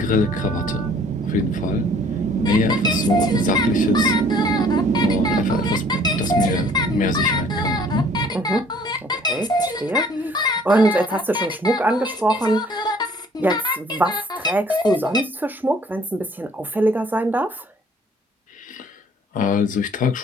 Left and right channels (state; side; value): normal; both; correlation 0.56